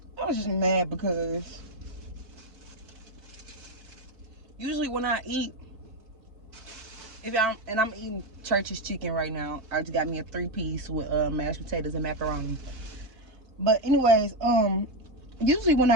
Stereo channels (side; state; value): left; late; 4.5 ms